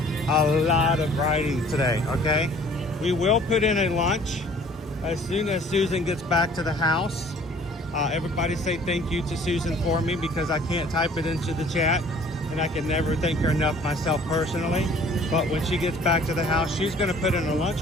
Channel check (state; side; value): normal; both; correlation 0.53